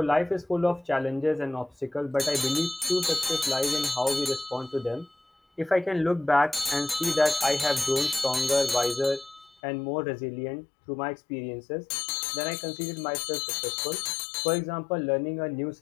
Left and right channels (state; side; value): drops out; right; at 9.6 s